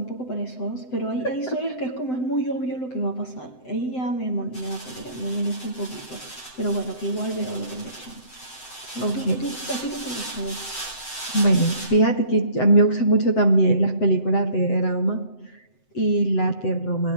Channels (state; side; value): late; right; 7.8 ms